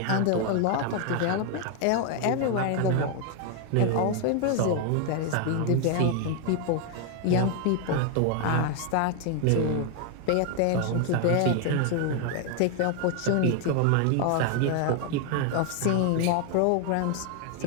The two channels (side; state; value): both; different; correlation 0.01